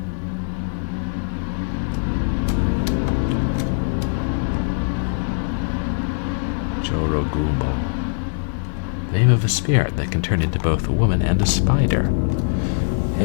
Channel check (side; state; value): right; silent; digital silence